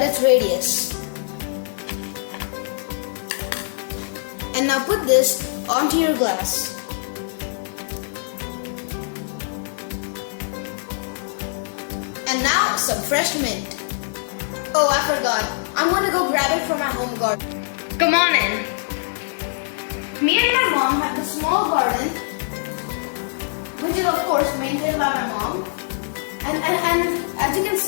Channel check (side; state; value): right; silent; digital silence